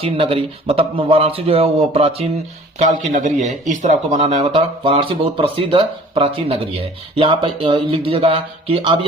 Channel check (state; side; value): normal; both; correlation 0.49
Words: नगरी, मतलब वाराणसी जो है वो प्राचीन काल की नगरी है, इस तरह आपको बनाना है। मतलब वाराणसी बहुत प्रसिद्ध प्राचीन नगरी है। यहाँ पे लिख दीजिएगा कि अब